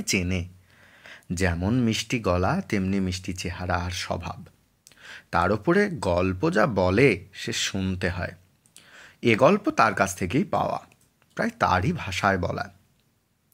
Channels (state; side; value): identical; both; correlation 1.00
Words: চেনে। যেমন মিষ্টি গলা তেমনি মিষ্টি চেহারা আর স্বভাব। তার উপরে গল্প যা বলে সে শুনতে হয়। এ গল্প তার কাছ থেকেই পাওয়া, প্রায় তারই ভাষায় বলা।